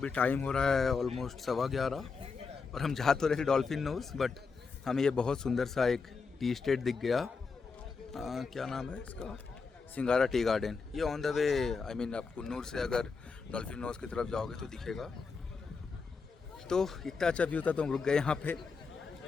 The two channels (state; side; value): quieter; right; 4.9 dB